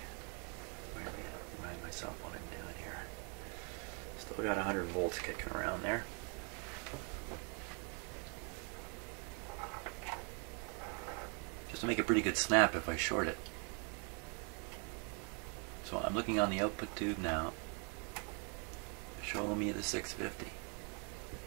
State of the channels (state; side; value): quieter; left; 37.4 dB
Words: Remind myself what I'm doing here. Still got 100 volts kicking around there. Just to make a pretty good snap if I short it. So I'm looking on the output tube now. Show me the 650.